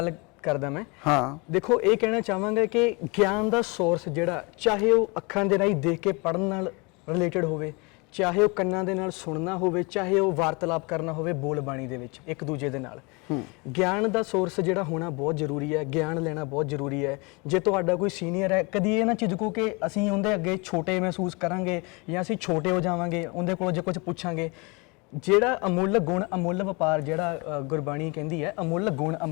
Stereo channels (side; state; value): right; quieter; 28.9 dB